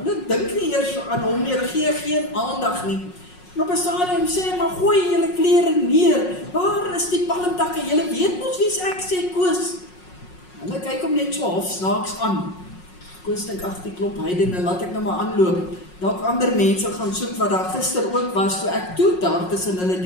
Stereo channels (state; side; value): late; right; 5.5 ms